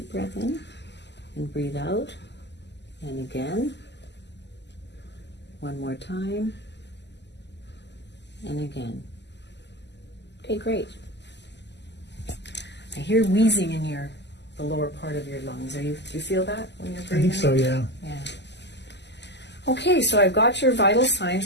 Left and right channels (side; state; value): right; late; 0.50 ms